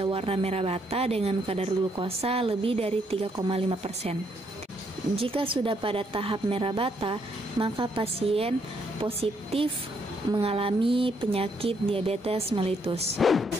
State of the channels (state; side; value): normal; both; correlation 0.73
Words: warna merah bata dengan kadar glukosa lebih dari 3,5%. Jika sudah pada tahap merah bata, maka pasien positif mengalami penyakit diabetes mellitus.